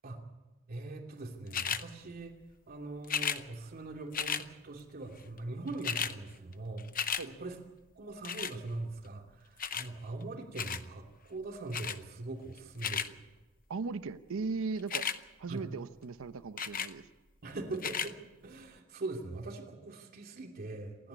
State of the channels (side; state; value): both; normal; correlation 0.30